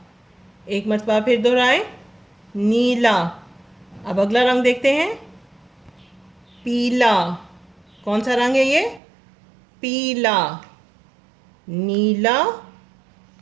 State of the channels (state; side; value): drops out; left; at 9.0 s